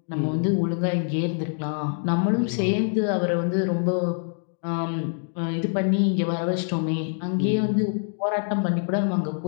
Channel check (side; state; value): right; silent; digital silence